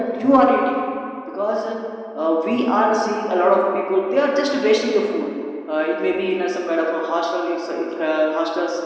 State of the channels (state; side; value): identical; both; correlation 1.00